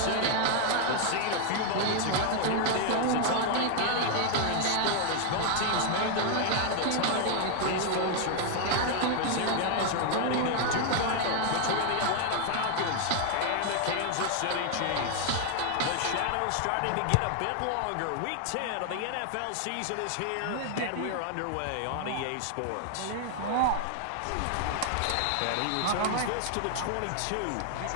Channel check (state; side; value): different; both; correlation 0.00